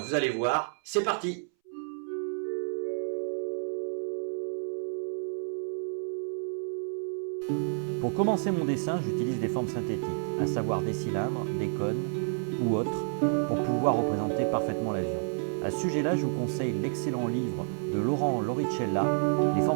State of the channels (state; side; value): silent; left; 58 dB below the other